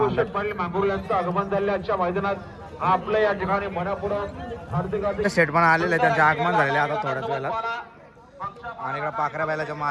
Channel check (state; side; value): identical; both; correlation 1.00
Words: पाटील मांगुर्ले यांचं आगमन झाले आजच्या मैदानात. आपलं या ठिकाणी मनपूर्वक हार्दिक शेठ पण आलेले त्यांचे आगमन झालेले आता थोड्याच वेळात. आणि इकडे पाखऱ्या बैलाचे